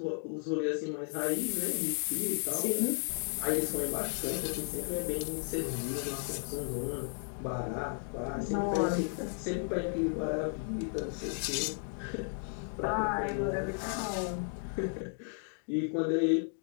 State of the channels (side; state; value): right; silent; 55 dB below the other